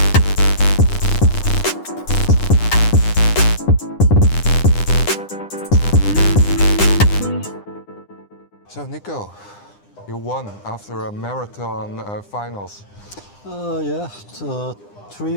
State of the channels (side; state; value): right; late; 9.9 ms